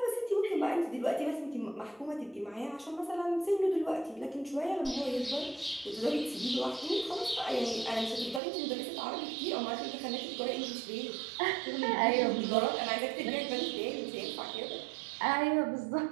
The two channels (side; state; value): left; drops out; at 8.4 s